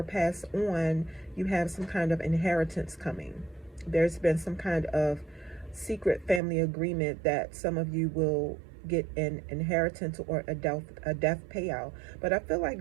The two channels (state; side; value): drops out; left; at 6.4 s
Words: passed on, you have some kind of inheritance coming. There's been some kind of secret family agreement that some of you will get an inheritance or a death payout. But I feel